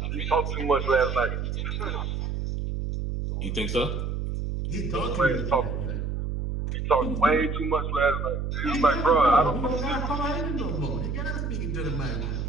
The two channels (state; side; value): noise; right; hum, 2 dB below the sound